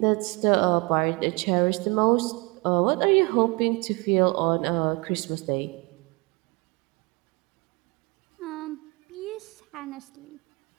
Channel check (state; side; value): quieter; left; 28.3 dB